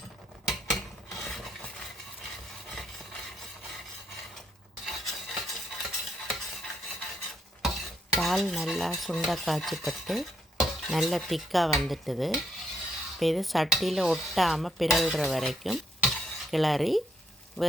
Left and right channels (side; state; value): both; normal; correlation 0.74